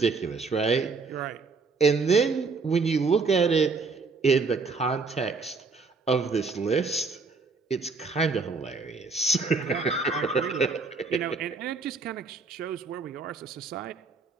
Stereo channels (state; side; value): quieter; left; 4.4 dB